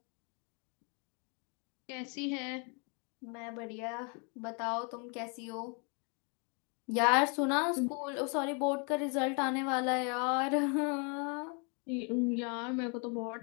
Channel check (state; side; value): quieter; right; 35.6 dB